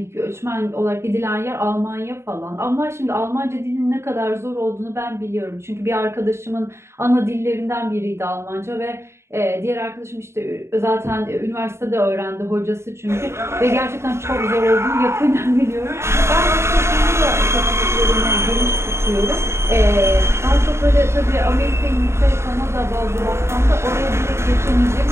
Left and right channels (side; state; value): left; late; 0.13 ms